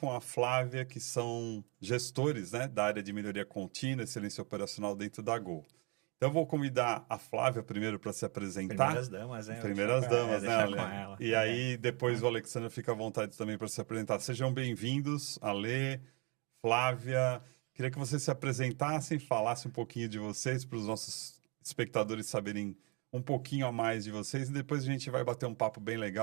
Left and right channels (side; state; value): left; quieter; 30.0 dB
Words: a Flávia, que são gestores, né, da área de melhoria contínua, excelência operacional dentro da Gol. Então, eu vou convidar a Flávia primeiro para se apresentar. Primeiras damas, né? Primeiras damas, né, Ale? Com ela. E aí, depois o Alexandre fica à vontade também para se apresentar. Sejam bem-vindos, Ale, Flávia. Queria que vocês se apresentassem, falassem um pouquinho de vocês, para os nossos espectadores saberem um pouquinho a mais de vocês. E depois a gente vai bater um papo bem